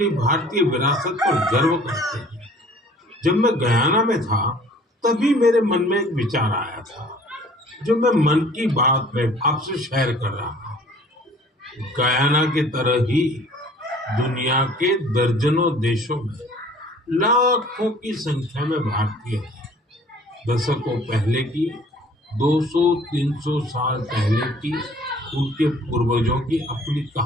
भारतीय विरासत पर गर्व करते हैं। जब मैं गयाना में था तभी मेरे मन में एक विचार आया था जो मैं मन की बात में आपसे शेयर कर रहा हूँ। गयाना की तरह ही दुनिया के दर्जनों देशों में लाखों की संख्या में भारतीय हैं। दशकों पहले की, 200-300 साल पहले की उनके पूर्वजों की अपनी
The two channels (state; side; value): normal; both; correlation 0.52